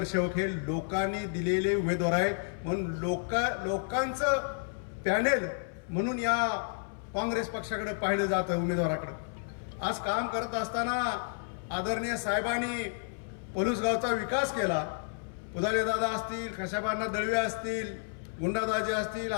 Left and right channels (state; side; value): silent; right; 57 dB below the other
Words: हे लोकांनी दिलेले उमेदवार आहेत. म्हणून लोकांचं पॅनल म्हणून या काँग्रेस पक्षाकडे पाहिलं जातं, उमेदवाराकडे. आज काम करत असताना आदरणीय साहेबांनी पलूस गावचा विकास केला. पुदाले दादा असतील, खशाबांना दळवे असतील, गुंडादाजी असतील,